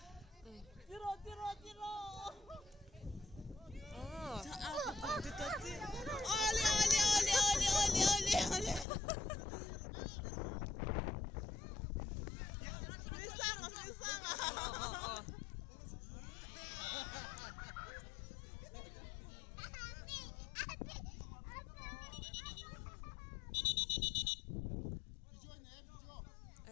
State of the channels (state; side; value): drops out; right; at 8.8 s